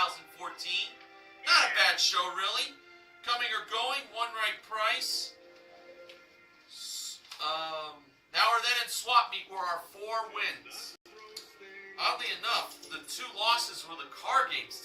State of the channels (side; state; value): both; identical; correlation 1.00